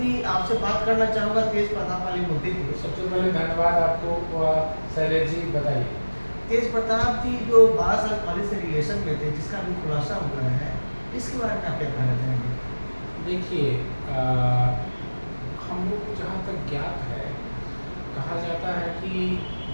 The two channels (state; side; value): inverted; both; correlation -1.00